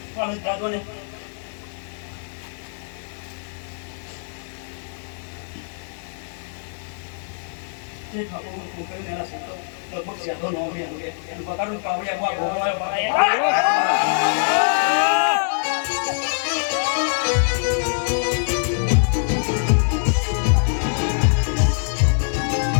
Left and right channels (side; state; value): right; silent; digital silence